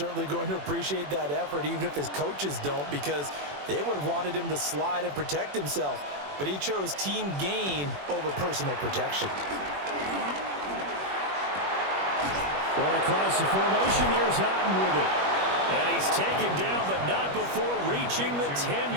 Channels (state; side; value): late; left; 21 ms